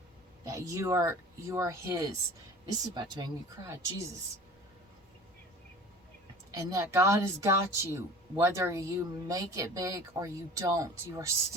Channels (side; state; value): both; normal; correlation 0.42